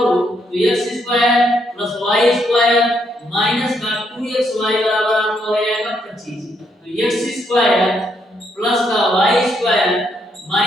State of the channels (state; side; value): normal; both; correlation 0.75